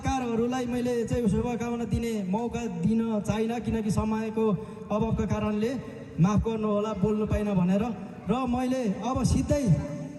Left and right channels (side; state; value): both; identical; correlation 1.00